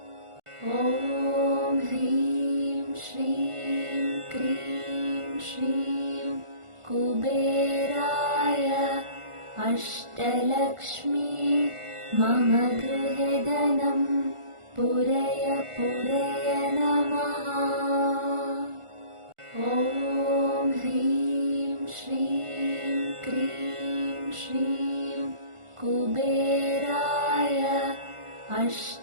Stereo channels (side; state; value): left; late; 1.4 ms